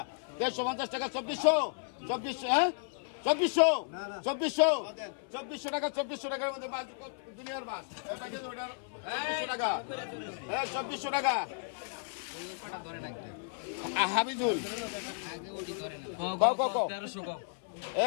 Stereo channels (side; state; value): right; silent; 55 dB below the other